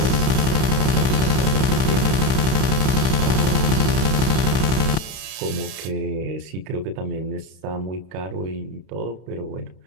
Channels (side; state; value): left; late; 32 ms